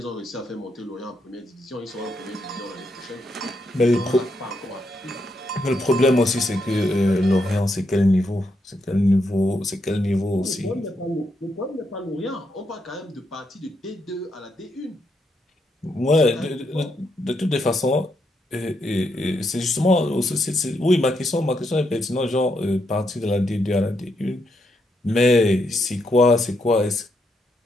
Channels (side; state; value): both; normal; correlation 0.80